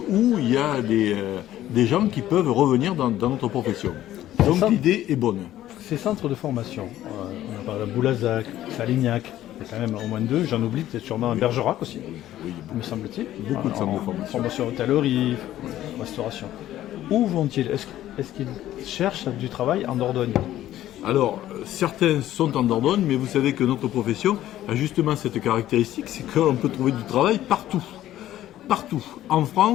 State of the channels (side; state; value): right; quieter; 13.3 dB